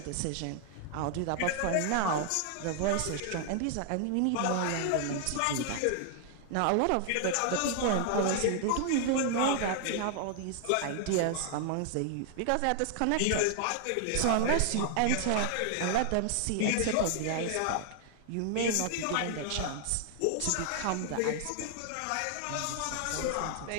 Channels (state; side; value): different; both; correlation 0.00